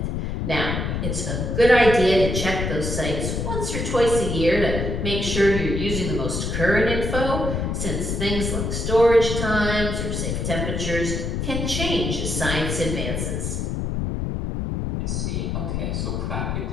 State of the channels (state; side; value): noise; left; rumble, 2 dB below the sound